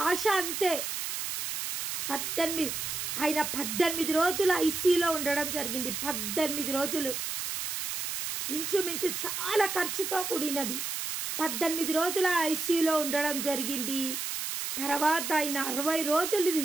ఆశ అంతే. 18 రోజులు ఐసీయూలో ఉండడం జరిగింది. 18 రోజులు, ఇంచుమించు చాలా ఖర్చుతో కూడినది. 18 రోజుల ఐసీయూలో ఉండడం జరిగింది. తర్వాత ఆయన 60 రోజులు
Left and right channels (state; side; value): noise; right; hiss, 4 dB below the sound